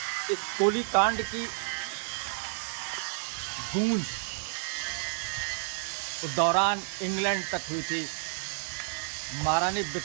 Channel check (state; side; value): silent; left; 57 dB below the other